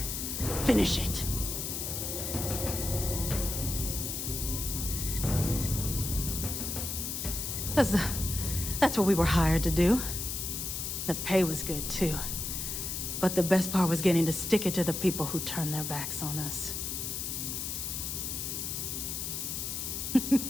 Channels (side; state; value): left; noise; hiss, 3 dB below the sound